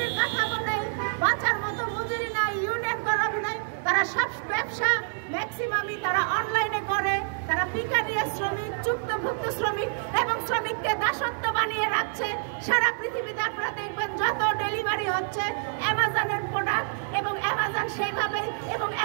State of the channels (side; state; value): left; silent; 60 dB below the other